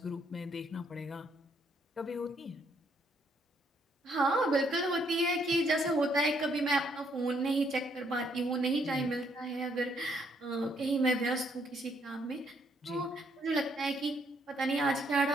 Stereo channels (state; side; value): normal; both; correlation 0.70